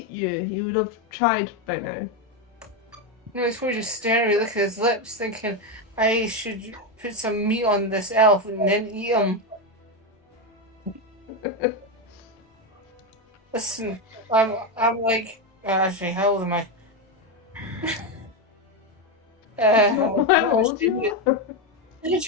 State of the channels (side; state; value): both; normal; correlation 0.10